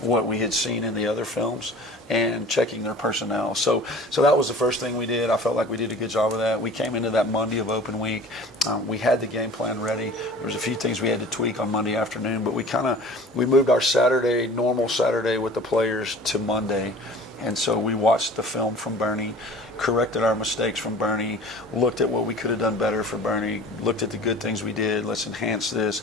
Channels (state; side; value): normal; both; correlation 0.44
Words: we had seen in the other films and checking their personnel. So that was the first thing we did. I felt like we did a good job of that. We came into that Monday of open week. We had the game plan ready. There was a few things we had to tweak on Monday afternoon, but we moved our Saturday, normal Saturday with the players to Monday. And so we watched the film from Bernie, corrected our mistakes from Bernie, looked at what we could have done better for Bernie, looked at the good things we did, let's enhance this.